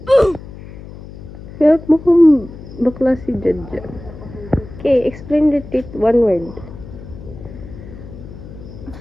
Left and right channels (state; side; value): noise; left; hum, 15 dB below the sound